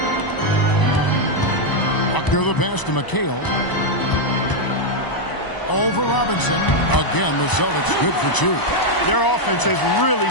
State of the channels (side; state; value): right; late; 1.0 ms